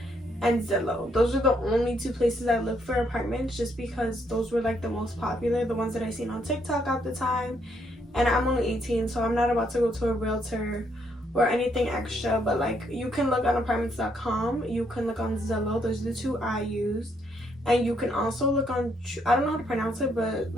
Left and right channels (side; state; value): both; normal; correlation 0.73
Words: and Zillow. Those are the only two places I look for apartments, just because those were like the most popular, the ones that I seen on TikTok at the time. And I'm only 18, so I'm not about to go to a realtor or anything extra. But like, you can look on apartments.com, you can look on Zillow. Those are the two I used. And you can also look on, I don't know how to pronounce it, but